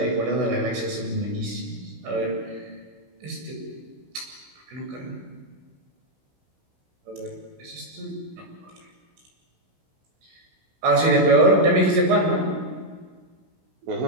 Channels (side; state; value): left; late; 16 ms